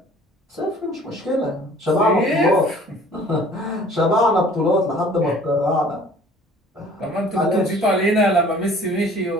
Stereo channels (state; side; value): normal; both; correlation 0.51